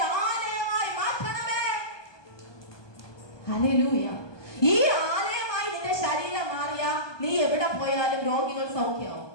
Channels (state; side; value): late; right; 1.2 ms